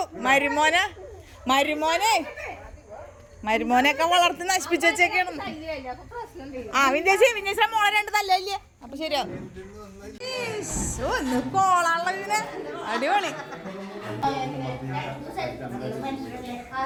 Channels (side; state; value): both; identical; correlation 1.00